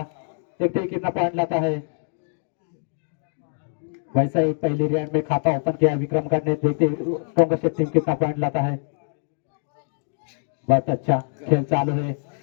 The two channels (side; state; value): right; silent; 63 dB below the other